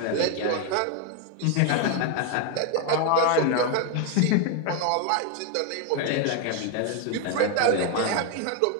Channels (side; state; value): both; different; correlation 0.01